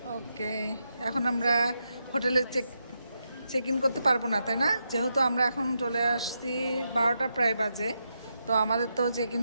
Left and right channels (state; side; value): inverted; both; correlation -0.84